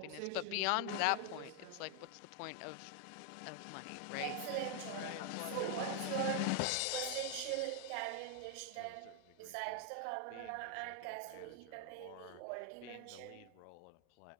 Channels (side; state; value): both; different; correlation 0.01